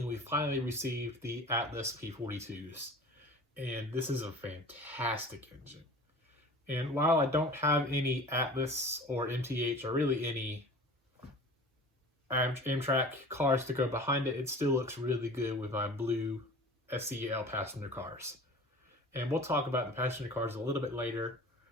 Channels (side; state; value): both; normal; correlation 0.41